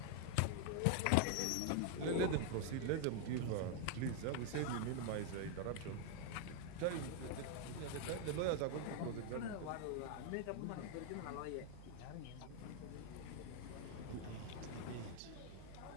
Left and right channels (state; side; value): different; both; correlation 0.00